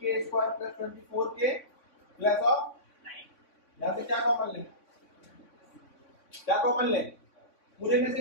square plus 24k plus of 9 यहाँ से क्या कॉमन लें, पूरे में से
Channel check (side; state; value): right; late; 3.6 ms